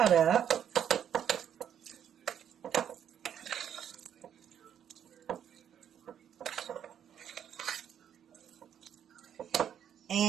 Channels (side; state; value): left; quieter; 9.2 dB